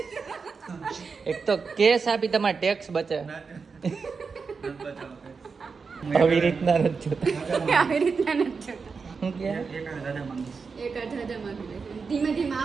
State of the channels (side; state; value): left; quieter; 5.1 dB